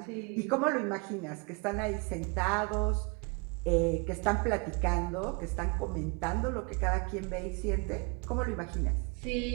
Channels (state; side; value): quieter; left; 31.7 dB